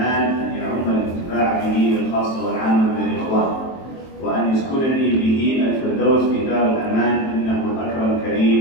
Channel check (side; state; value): right; late; 23 ms